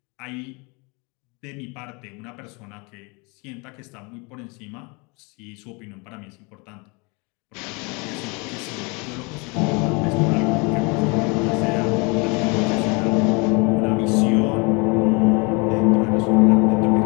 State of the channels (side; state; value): right; quieter; 29.9 dB